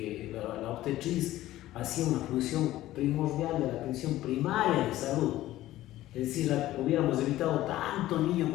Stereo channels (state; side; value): quieter; right; 15.2 dB